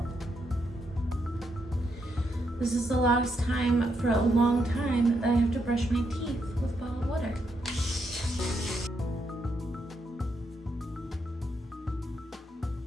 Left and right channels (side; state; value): both; normal; correlation 0.79